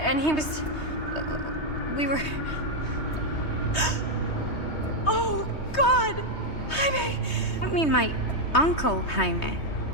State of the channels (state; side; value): late; right; 3.2 ms